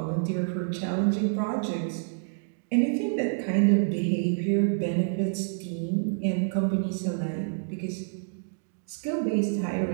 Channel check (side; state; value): left; silent; digital silence